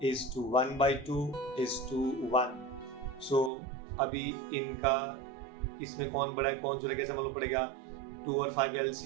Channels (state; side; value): drops out; left; at 3.5 s